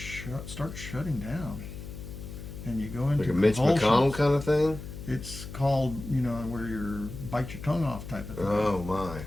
starts shutting down, and you go into Like a Mitch convulsions. McConnell kind of thing? It's called, where you bite your tongue off type of thing. Oh my.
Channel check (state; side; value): noise; left; hum, 11 dB below the sound